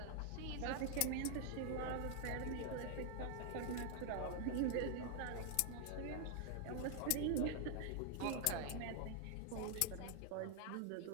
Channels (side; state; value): both; different; correlation 0.00